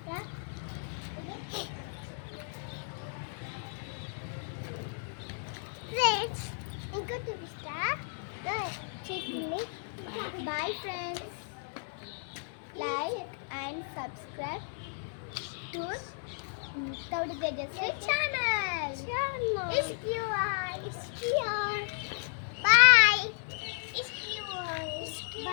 ఫ్రెండ్స్ ఇంకా చూపిస్తా చెట్లని. Bye friends. Like and subscribe to Taudi Tejasvi channel. It's pure.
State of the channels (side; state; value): right; silent; 55 dB below the other